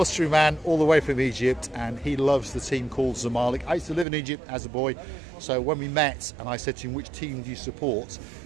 Man all the way from Egypt, and he loves the team called Zamalek. I used to live in Egypt as a boy, so when we met and I said to him, which team do you support?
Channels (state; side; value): drops out; left; at 4.0 s